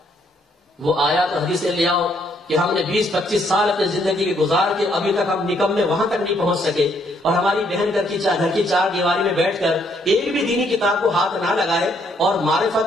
وہ آیا تو حدیثیں لے آؤ کہ ہم نے 20-25 سال اپنی زندگی کے گزار کے ابھی تک ہم نکمے وہاں تک نہیں پہنچ سکے، اور ہماری بہن گھر کی چار دیواری میں بیٹھ کر ایک بھی دینی کتاب کو ہاتھ نہ لگائے، اور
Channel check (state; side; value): normal; both; correlation 0.70